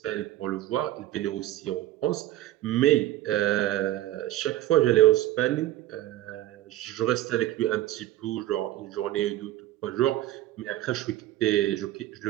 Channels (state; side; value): quieter; left; 14.5 dB